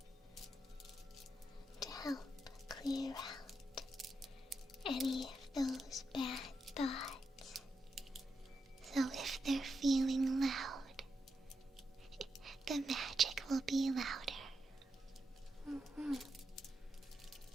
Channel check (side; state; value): both; normal; correlation 0.85